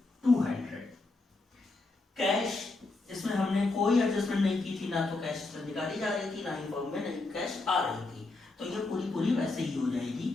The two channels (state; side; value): quieter; right; 3.3 dB